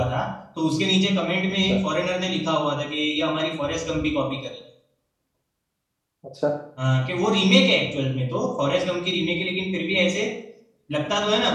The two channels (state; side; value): identical; both; correlation 1.00